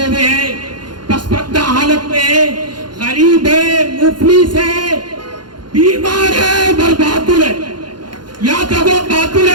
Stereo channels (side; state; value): left; late; 0.71 ms